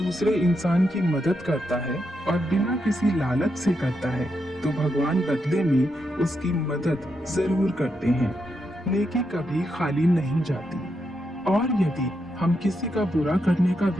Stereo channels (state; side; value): normal; both; correlation 0.83